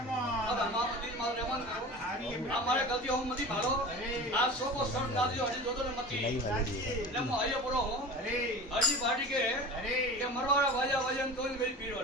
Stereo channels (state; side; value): normal; both; correlation 0.35